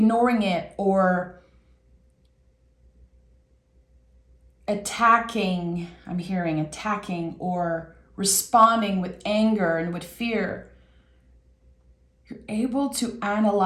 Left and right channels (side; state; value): both; identical; correlation 1.00